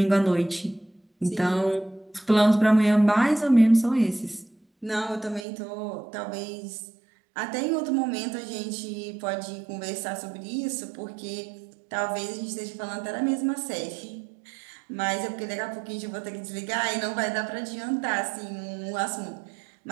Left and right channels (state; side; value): drops out; left; at 5.5 s